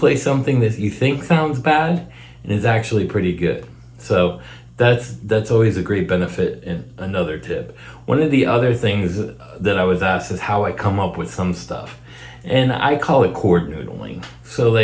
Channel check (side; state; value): both; identical; correlation 1.00